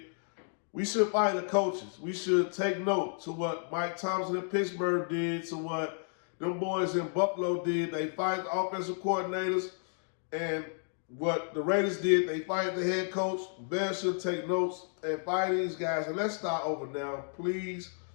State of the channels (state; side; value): silent; right; 56 dB below the other